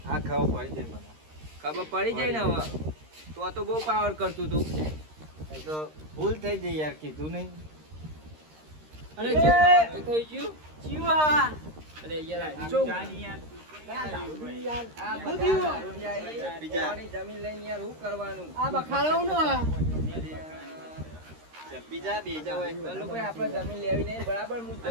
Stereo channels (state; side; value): late; left; 13 ms